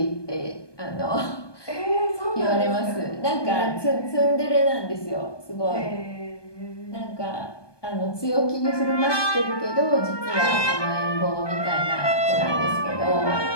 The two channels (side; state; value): right; late; 1.2 ms